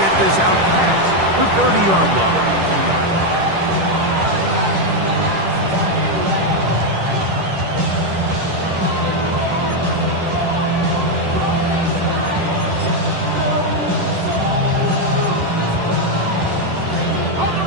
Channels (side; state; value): left; late; 10 ms